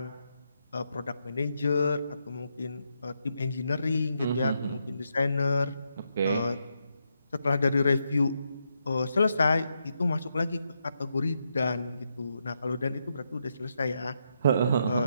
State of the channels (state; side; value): inverted; both; correlation -0.82